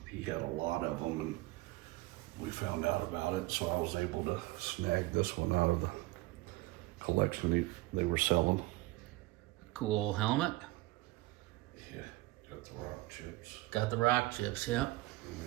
he had a lot of them, and we found out about it, so I was able to snag this one out of the collection they were selling. Cool helmet. Yeah, got the rock chips. Got the rock chips, yep. And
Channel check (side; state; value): left; quieter; 20.1 dB